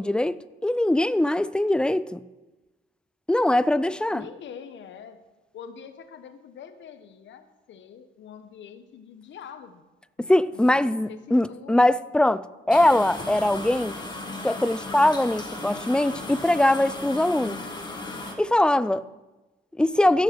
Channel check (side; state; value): both; normal; correlation 0.95